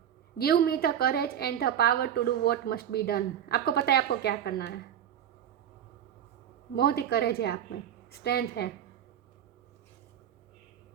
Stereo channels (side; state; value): left; quieter; 9.8 dB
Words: Give me the courage and the power to do what must be done, आपको पता है आपको क्या करना है, बहुत ही करेज है आप में, स्ट्रेंथ है,